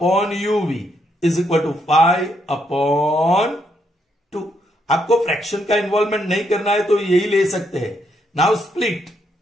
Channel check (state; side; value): normal; both; correlation 0.76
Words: uv is equal to 5 upon 2. आपको फ्रैक्शन का इन्वॉल्वमेंट नहीं करना है तो यही ले सकते हैं. Now split